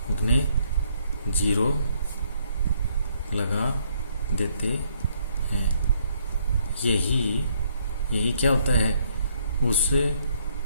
उतने 0 लगा देते हैं। यही क्या होता है? उस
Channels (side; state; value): both; inverted; correlation -0.69